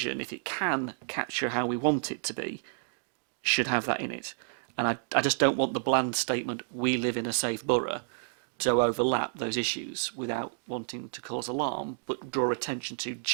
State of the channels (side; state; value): left; silent; digital silence